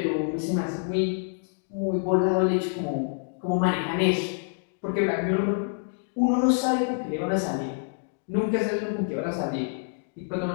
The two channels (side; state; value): right; silent; digital silence